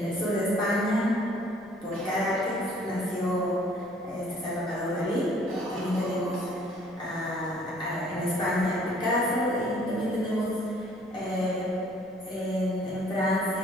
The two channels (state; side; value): noise; right; rumble, 27 dB below the sound